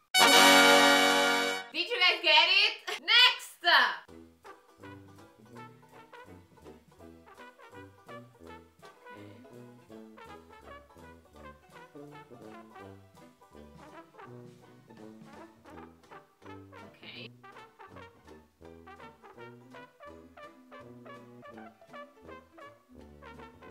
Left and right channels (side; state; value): both; identical; correlation 1.00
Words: it. Did you guys get it? Next. Okay.